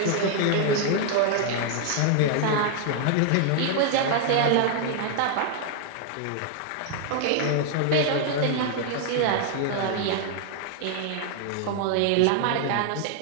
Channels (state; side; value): different; both; correlation 0.00